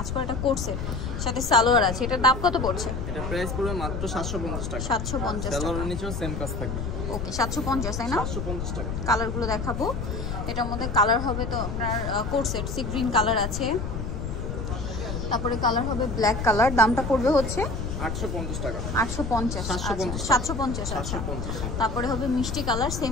করে, এটা কোর্সের সাথে সালোয়ার আছে। এটার দাম কত পড়ছে? এটা প্রাইস পড়বে মাত্র 750 টাকা। 750 টাকা। সালোয়ারের নিচেও সেম কাজ থাকবে। ওকে, 750 তাই না? 750 টাকা। কালারগুলো দেখাবো। এটার মধ্যে কালার হবে তো আপনার কোর্সেট সি গ্রিন কালার আছে, তারপরে কালার হবে ব্ল্যাক কালার। দামটা পড়বে হচ্ছে 850 টাকা। 850। 750। আচ্ছা, তারপরে হবে মিষ্টি কালার,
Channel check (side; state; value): left; noise; rumble, 4 dB below the sound